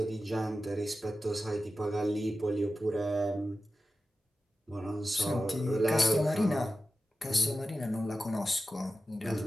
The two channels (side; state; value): both; normal; correlation 0.93